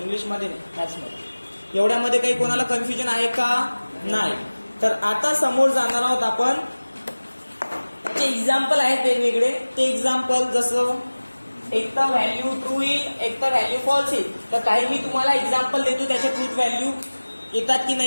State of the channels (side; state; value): both; inverted; correlation -1.00